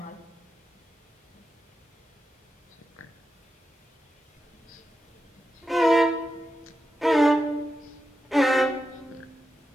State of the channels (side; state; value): both; normal; correlation 0.89